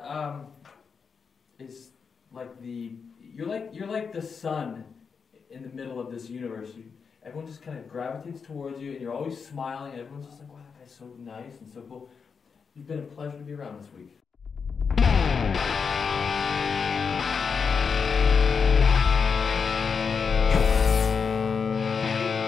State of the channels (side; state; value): right; quieter; 5.8 dB